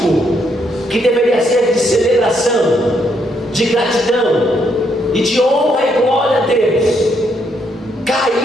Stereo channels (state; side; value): normal; both; correlation 0.74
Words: que deveria ser de celebração, de gratidão e de honra e glória a Deus,